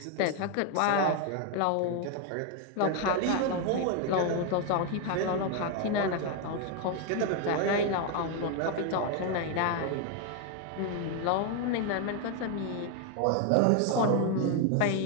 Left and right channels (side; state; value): both; different; correlation 0.01